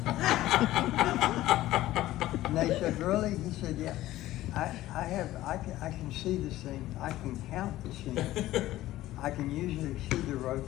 And they said, really? He said, yeah. I can see the seam. I can count the seam. I can usually see the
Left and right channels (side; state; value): right; quieter; 15.4 dB